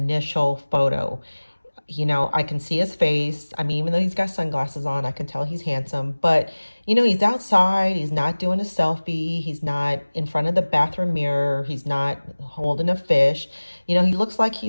photo. I can see his face. Even though he's got sunglasses on, I can tell he's handsome. But, he's outside. He's not doing a selfie. He's not in front of the bathroom mirror. He's not holding a fish. He looks like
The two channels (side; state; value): both; inverted; correlation -1.00